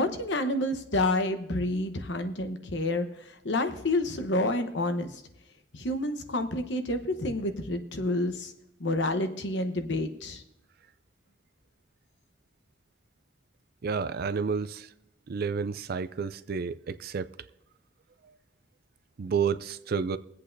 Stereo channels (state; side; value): normal; both; correlation 0.29